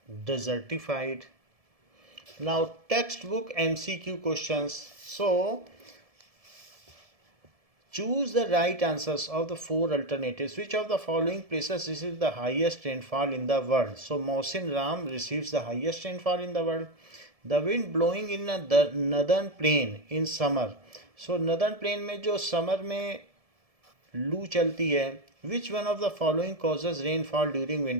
desertified. Now textbook MCQ questions. So choose the right answers of the four alternatives. Which of the following places receives the highest rainfall in the world? So Mohsin Ram receives the highest rainfall in the world. The wind blowing in the northern plain in summer. So northern plain में जो समर में लू चलती है, which one of the following causes rainfall during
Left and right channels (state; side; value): late; left; 1.7 ms